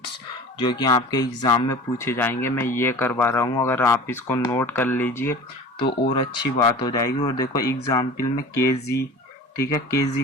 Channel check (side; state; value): both; normal; correlation 0.39